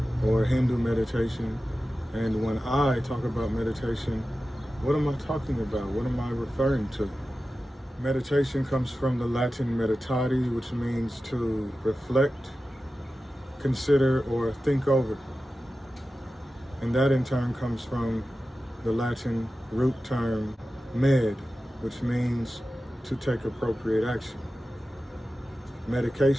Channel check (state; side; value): normal; both; correlation 0.94